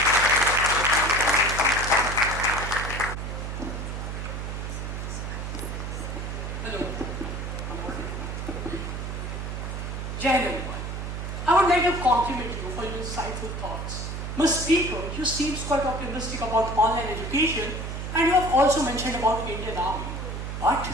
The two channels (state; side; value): noise; right; hum, 5 dB below the sound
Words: Hello. Jai Hind, everyone. I would like to compliment you for your insightful thoughts. Ms. Speaker, you seem quite optimistic about online education and you have also mentioned about Indian Army. But